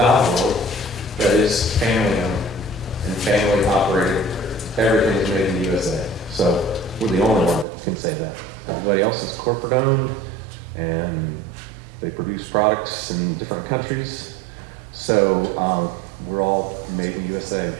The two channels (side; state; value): left; drops out; at 7.7 s